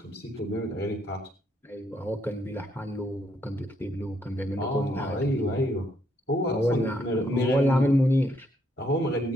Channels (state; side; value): normal; both; correlation 0.72